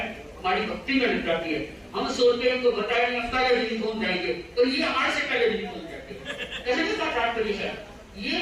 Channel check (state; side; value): identical; both; correlation 1.00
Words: हमारी भक्ति में लग जाती है, हम सोचते हैं तो बताएंगे पहले दिन पहुंच जाएंगे, तो ये आज से पहले दिन पहुंच जाते हैं, कहने का तात्पर्य है ये